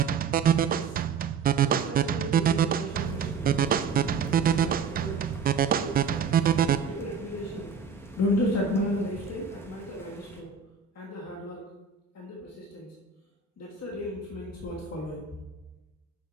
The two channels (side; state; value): left; quieter; 5.9 dB